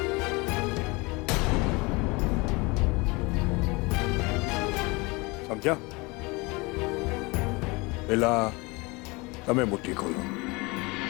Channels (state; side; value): quieter; right; 25.8 dB